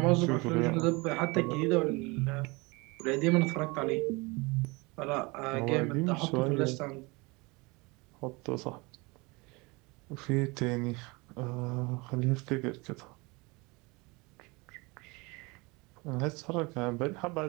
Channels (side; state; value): left; quieter; 25.9 dB